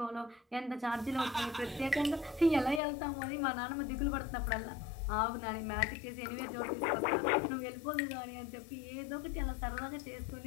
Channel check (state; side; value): drops out; right; at 2.8 s